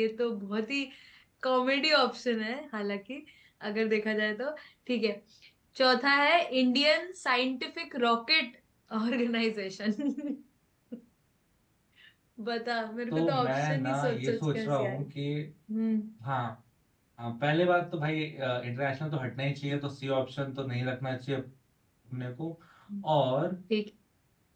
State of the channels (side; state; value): both; identical; correlation 1.00